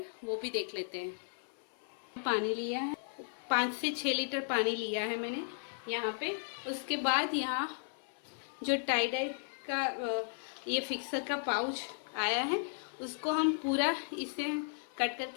वो भी देख लेते हैं। पानी लिया है, 5 से 6 लीटर पानी लिया है मैंने यहाँ पे। उसके बाद यहाँ जो टाई डाई का ये फिक्सर का पाउच आया है उसको हम पूरा इसे कट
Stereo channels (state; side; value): silent; right; 54 dB below the other